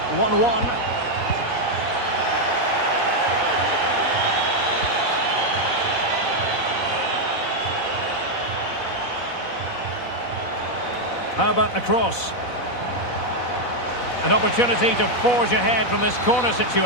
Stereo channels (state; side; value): late; right; 4.0 ms